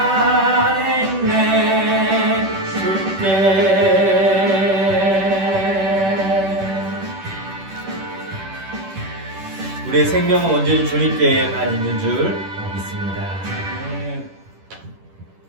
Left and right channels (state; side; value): late; left; 10 ms